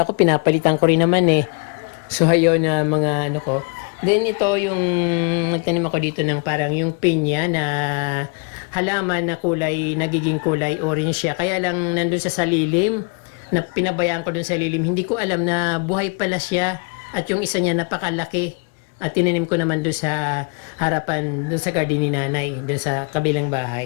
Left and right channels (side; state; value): right; quieter; 35.3 dB